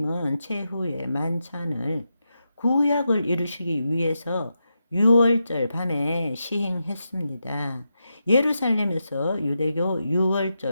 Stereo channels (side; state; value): both; inverted; correlation -0.87